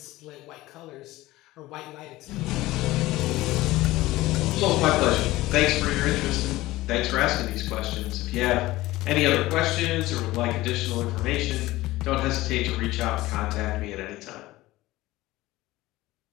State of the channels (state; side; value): quieter; right; 18.0 dB